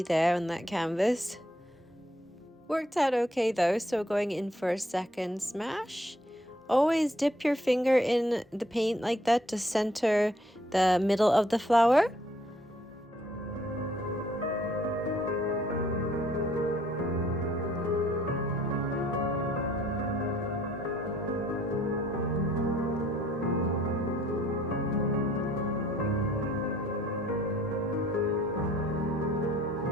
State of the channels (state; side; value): normal; both; correlation 0.63